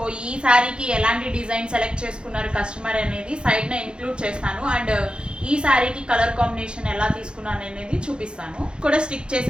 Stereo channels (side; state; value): left; late; 0.053 ms